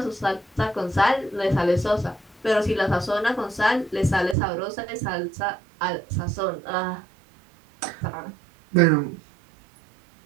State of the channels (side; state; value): left; drops out; at 4.4 s